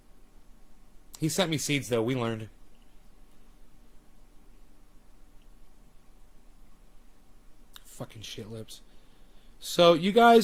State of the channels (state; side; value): identical; both; correlation 1.00